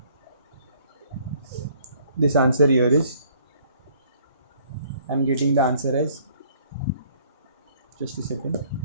this answer here is I'm getting the answer as, just a second.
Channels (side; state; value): both; inverted; correlation -0.60